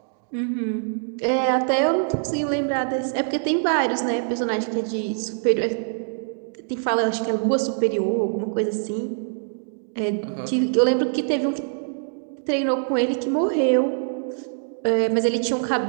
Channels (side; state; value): left; silent; digital silence